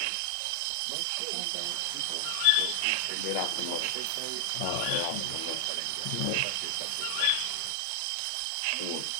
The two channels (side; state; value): both; different; correlation 0.00